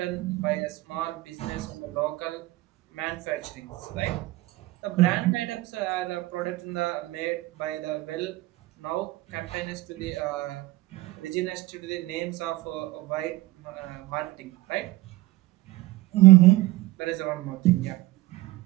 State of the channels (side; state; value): left; quieter; 18.5 dB